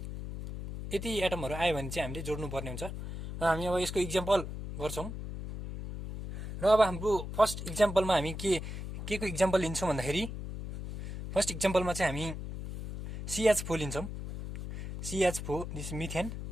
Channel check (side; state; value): left; noise; hum, 7 dB below the sound